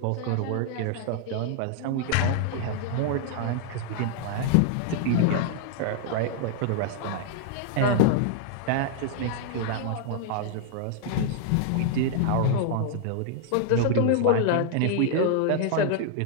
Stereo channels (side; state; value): both; different; correlation 0.00